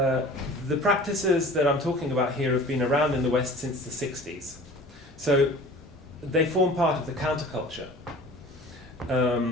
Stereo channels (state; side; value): normal; both; correlation 0.43